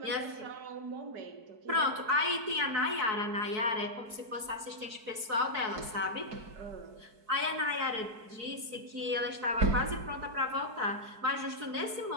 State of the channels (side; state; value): left; late; 4.6 ms